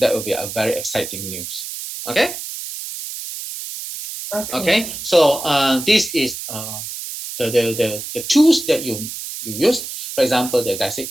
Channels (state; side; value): noise; right; hiss, 8 dB below the sound